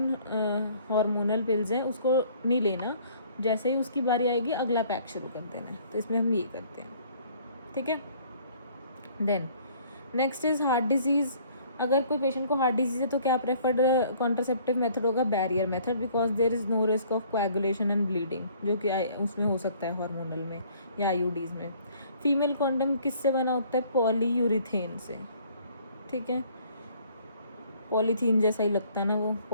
हार्मोनल पिल्स हैं उसको नहीं लेना, जैसे ही उसकी बारी आएगी अगला पैक शुरू कर देना है। तो इसमें हम ये करते हैं, ठीक है। Then next is heart disease. अगर कोई पेशेंट को हार्ट डिजीज़ है तो क्या प्रेफर्ड कॉन्ट्रासेप्टिव मेथड होगा? Barrier method, because there is no risk of coagulation and bleeding, जो कि उसमें हो सकता है हार्मोनल में या आईयूडीज़ में। फीमेल कॉन्डम किससे बना होता है? पॉलीयूरिथेन से, ठीक है, पॉलीथीन जैसा ही लगता है ना वो,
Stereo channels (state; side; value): inverted; both; correlation -0.58